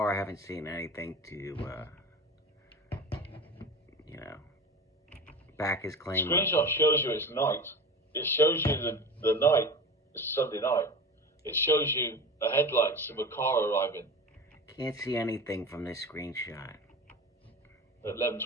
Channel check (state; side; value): normal; both; correlation 0.32